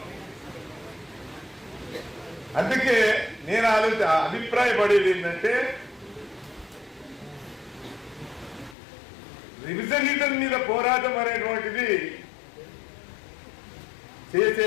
అందుకే నేను అభిప్రాయపడేది ఏంటంటే రివిజనిజం మీద పోరాటం అనేటువంటిది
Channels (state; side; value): drops out; right; at 8.8 s